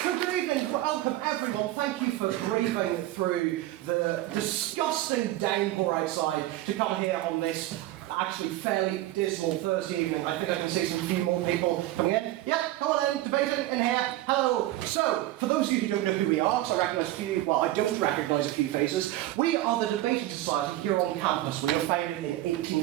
So good evening, welcome everyone. Thank you for braving through the disgusting downpour outside to come here on this actually fairly dismal Thursday evening. I think I can see some few more people coming in. Yeah, come on in, debating in here. Hello. So, for those of you who don't know who we are, because I recognise a few, well, I don't recognise a few faces, we are the Debating Society here on campus. We were founded in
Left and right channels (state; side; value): quieter; left; 15.7 dB